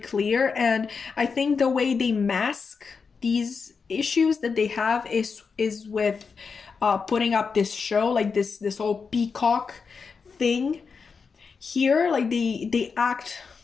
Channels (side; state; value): right; quieter; 5.3 dB